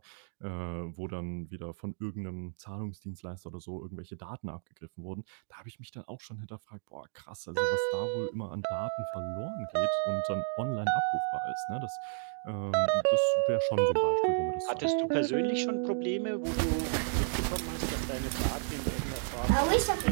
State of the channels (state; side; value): silent; left; digital silence